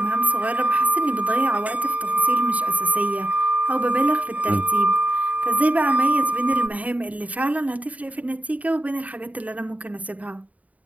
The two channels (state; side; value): late; left; 0.070 ms